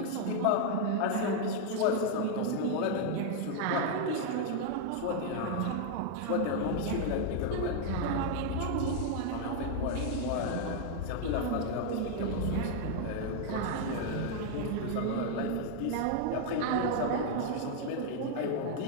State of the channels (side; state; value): both; different; correlation 0.00